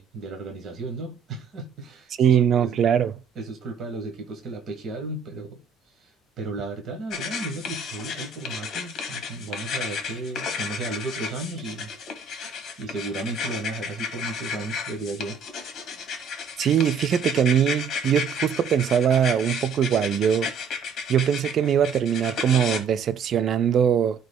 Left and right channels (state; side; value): quieter; left; 5.9 dB